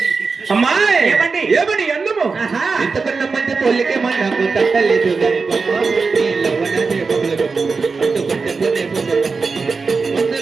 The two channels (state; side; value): quieter; left; 4.6 dB